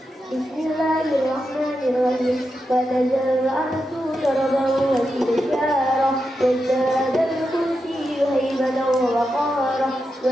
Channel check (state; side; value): normal; both; correlation 0.87